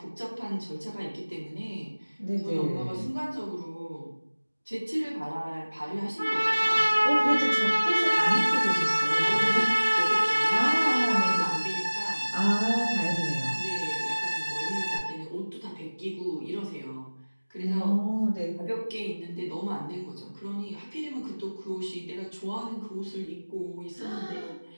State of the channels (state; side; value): inverted; both; correlation -1.00